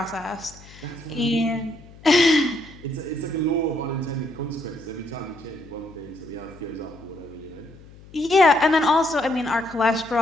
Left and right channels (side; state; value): left; noise; hum, 21 dB below the sound